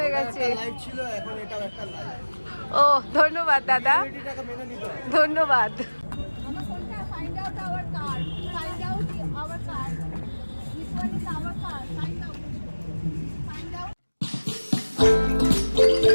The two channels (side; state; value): both; inverted; correlation -1.00